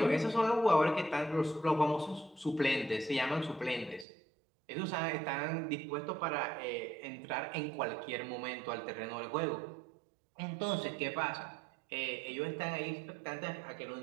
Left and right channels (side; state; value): left; drops out; at 4.0 s